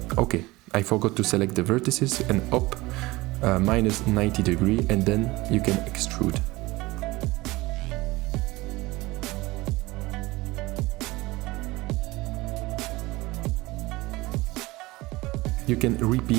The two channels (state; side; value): quieter; left; 20.8 dB